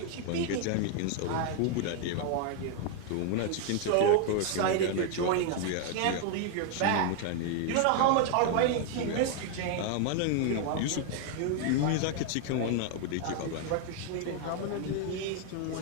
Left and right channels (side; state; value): both; different; correlation 0.00